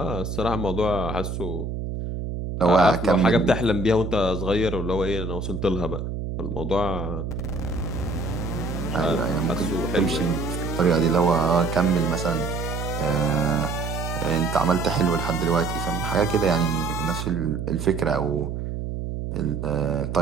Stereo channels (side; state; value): right; noise; hum, 5 dB below the sound